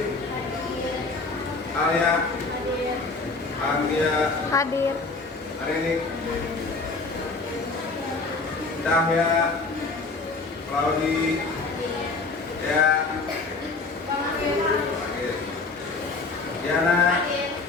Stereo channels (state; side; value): quieter; right; 3.8 dB